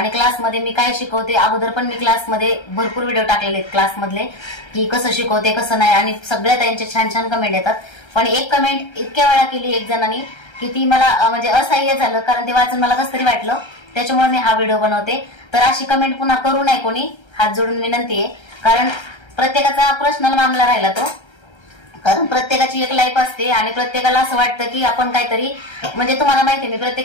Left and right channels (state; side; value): late; right; 1.3 ms